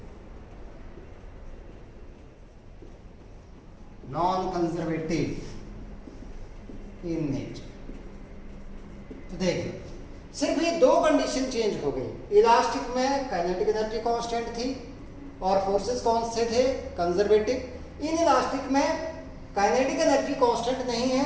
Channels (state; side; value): identical; both; correlation 1.00